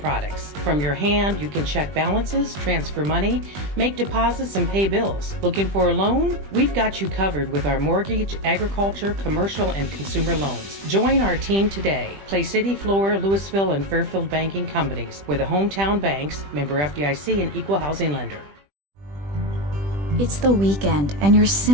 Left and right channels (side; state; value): left; late; 20 ms